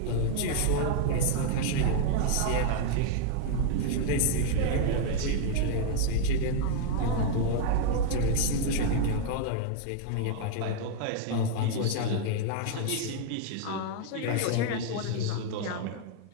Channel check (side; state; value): both; different; correlation 0.00